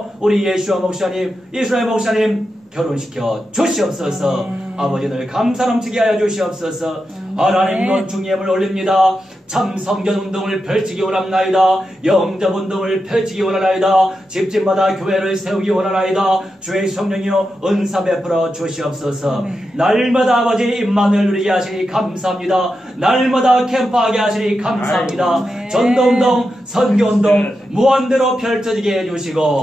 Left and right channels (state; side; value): normal; both; correlation 0.88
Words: 우리 예수와 목사님 이스라엘 목사님 결혼시켜 주시옵소서. 아버지 늘 감사 넘치게 하여 주시옵소서. 하나님 건중예물 올립니다. 참 성전운동을 펼치기 원합나이다. 영접운동을 펼치기 원하나이다. 집집마다 교회를 세우기 원하나이다. 주의 성령이여 은사 베풀어 주시옵소서. 날마다 아버지 임만을 누리게 하시니 감사합니다. 날마다 캠프하게 하시니 감사합니다. 전도운동 선교운동 무한대로 펼쳐지게